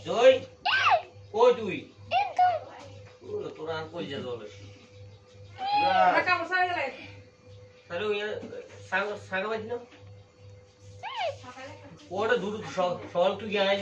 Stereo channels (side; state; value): both; identical; correlation 1.00